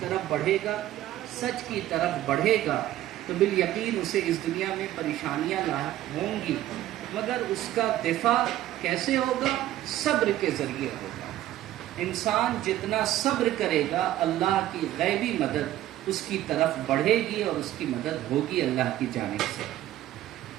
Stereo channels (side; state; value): left; quieter; 13.8 dB